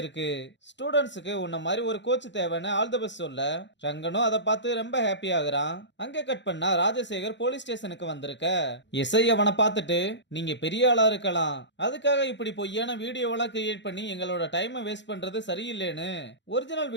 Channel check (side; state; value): right; late; 0.52 ms